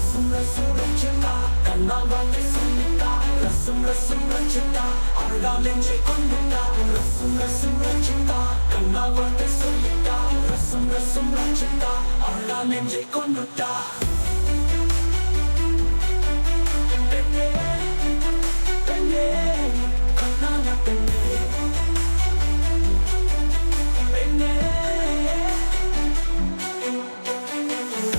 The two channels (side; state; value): both; inverted; correlation -1.00